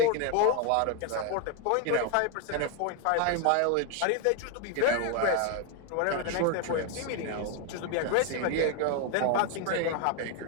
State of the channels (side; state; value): both; different; correlation 0.01